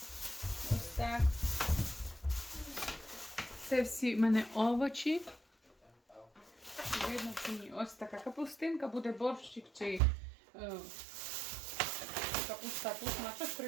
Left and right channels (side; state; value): left; drops out; at 10.0 s